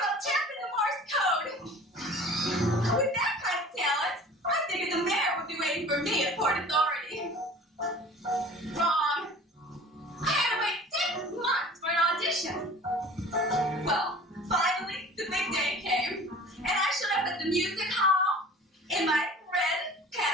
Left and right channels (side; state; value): both; normal; correlation 0.44